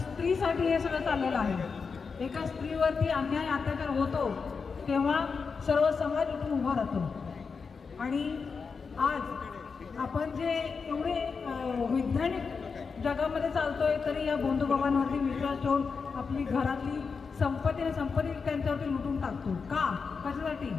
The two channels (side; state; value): right; quieter; 5.2 dB